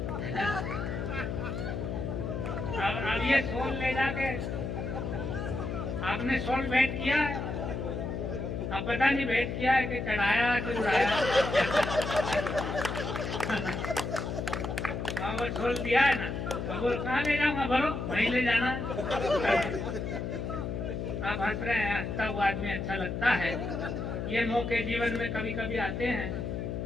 अब ये सोल ले जाके आपने सोल भेंट किया है, अब पता नहीं भेंट किया है कि चढ़ाया कि उड़ाया। वो सोल दिया है ना, अब वो कहाँ ले जाऊंगा, बोलो वहीं ले जाना। आप हंस रहे हैं, हंसता हुआ आदमी अच्छा लगता है। ये मौके जीवन में कभी कभी आते हैं।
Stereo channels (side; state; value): left; noise; hum, 3 dB below the sound